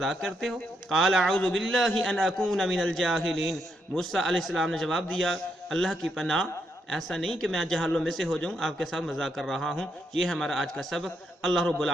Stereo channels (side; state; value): both; normal; correlation 0.79